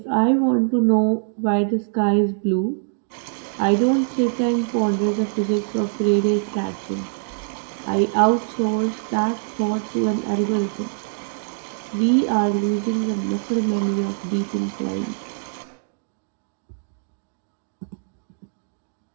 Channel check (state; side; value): silent; left; 59 dB below the other